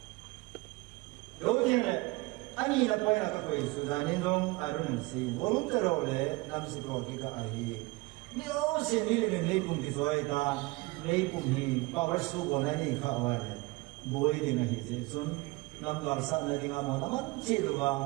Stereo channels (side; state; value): left; quieter; 23.6 dB